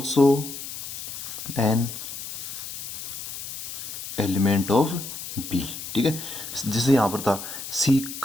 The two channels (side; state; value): left; noise; hiss, 8 dB below the sound